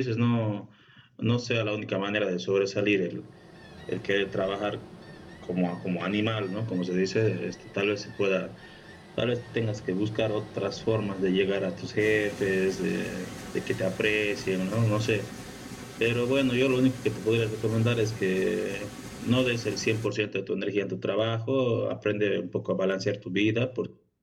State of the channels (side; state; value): both; identical; correlation 1.00